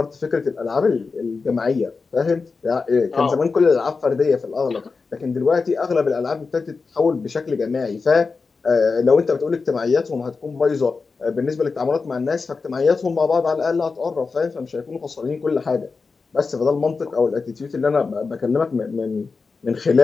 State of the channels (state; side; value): quieter; right; 4.5 dB